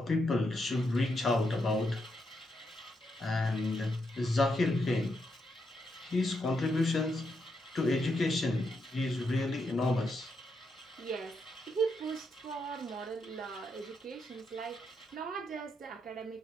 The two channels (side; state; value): both; normal; correlation 0.81